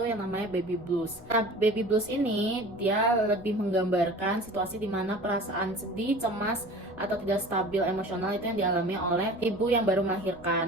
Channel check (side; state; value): both; normal; correlation 0.41